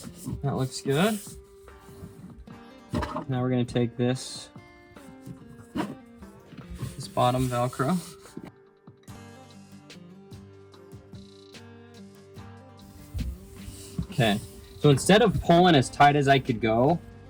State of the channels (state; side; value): identical; both; correlation 1.00